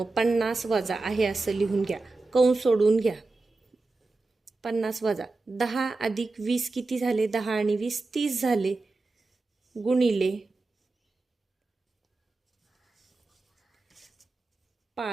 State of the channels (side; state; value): left; quieter; 3.5 dB